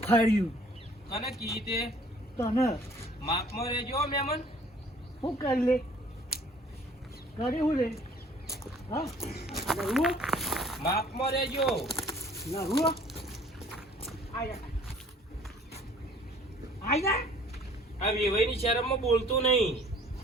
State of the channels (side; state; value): both; normal; correlation 0.54